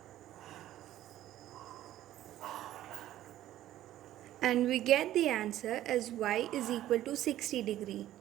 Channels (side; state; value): left; quieter; 13.4 dB